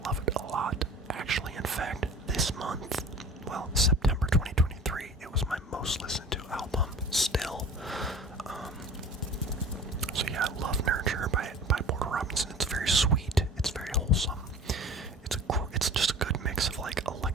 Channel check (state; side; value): normal; both; correlation 0.42